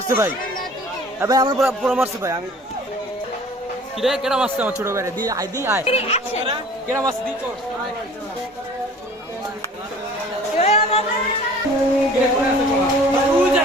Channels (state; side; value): normal; both; correlation 0.48